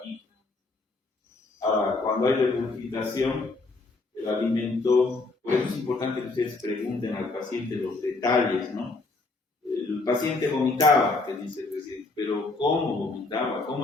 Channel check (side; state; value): right; quieter; 3.5 dB